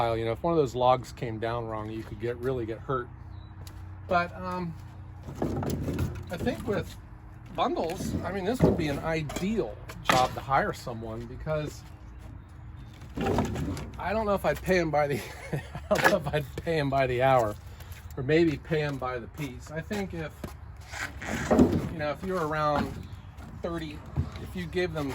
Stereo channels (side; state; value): both; identical; correlation 1.00